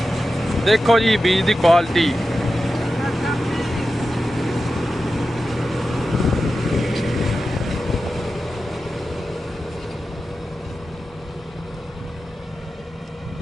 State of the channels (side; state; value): both; normal; correlation 0.92